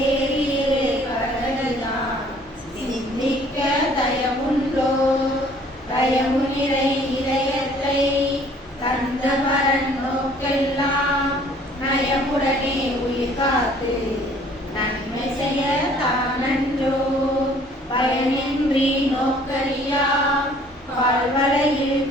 கடலையான் சிந்திக்க தயமுண்டோ தயமு நிறை இதயத்தை தந்த பரன் நோக்கெல்லாம் நயமுடனே உயிர் காத்து நன்மை செய்ய தானன்றோ பயனின்றி நோக்கரியா பால்வளையில்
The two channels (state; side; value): normal; both; correlation 0.56